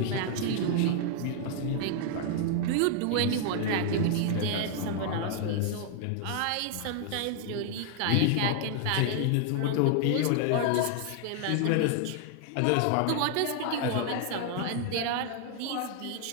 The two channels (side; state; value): both; different; correlation 0.00